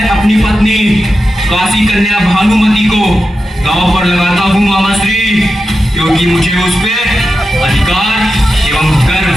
अपनी पत्नी काशी कन्या भानुमति को दांव पर लगाता हूँ मामाश्री, क्योंकि मुझे उस पे अधिकार एवं गर्व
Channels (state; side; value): normal; both; correlation 0.90